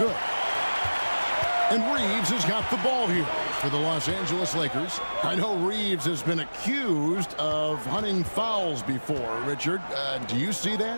And Reeves has got the ball here for the Los Angeles Lakers. I know Reeves has been accused of hunting fouls before. Richard, do you see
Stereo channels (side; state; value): both; inverted; correlation -1.00